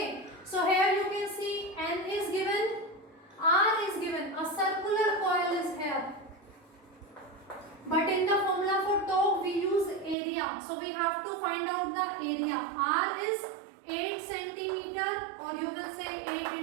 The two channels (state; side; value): drops out; left; at 10.2 s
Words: So here you can see N is given, R is given, a circular coil is here, but in the formula for torque we use area, so we have to find out the area. R is 8 centimeter, or you will say 8